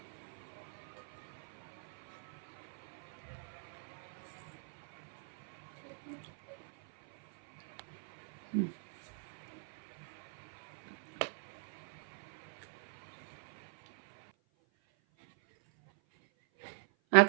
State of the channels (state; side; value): silent; left; 51 dB below the other